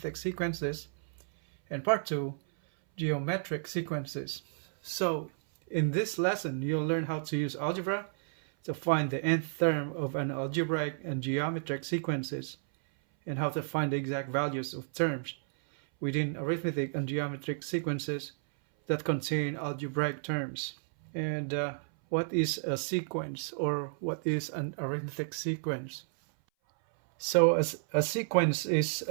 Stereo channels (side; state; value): left; silent; 57 dB below the other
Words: sequences and part 2, geometric sequences. So in this lesson, you'll learn how to use algebra to find the nth term of an algebraic and geometric sequences and how to find the exact values of terms within arithmetic and geometric sequences that contain algebraic terms. And what is a sequence, or what is an arithmetic sequence? So a sequence is